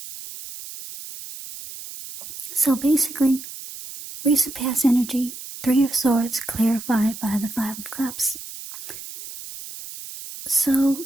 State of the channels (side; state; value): right; noise; hiss, 12 dB below the sound